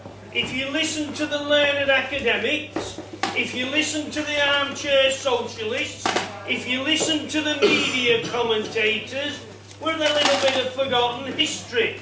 If you listen to the learned academics, if you listen to the armchair socialists, if you listen to the media commentators, we're a little bit of forgotten history.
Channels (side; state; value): both; identical; correlation 1.00